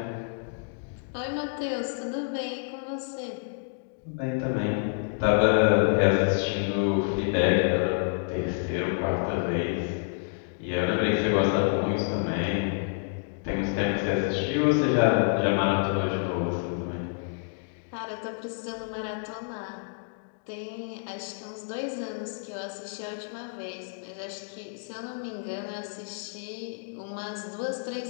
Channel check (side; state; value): right; silent; digital silence